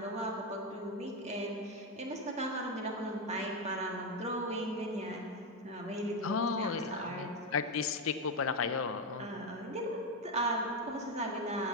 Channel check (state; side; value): normal; both; correlation 0.08